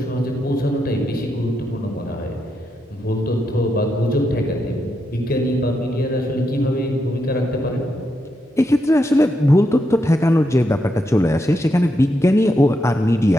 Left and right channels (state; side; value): normal; both; correlation 0.83